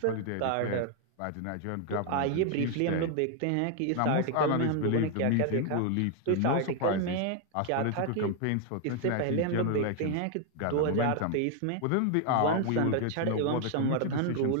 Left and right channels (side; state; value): both; different; correlation 0.00